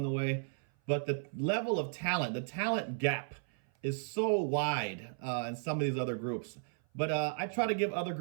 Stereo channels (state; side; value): silent; left; 55 dB below the other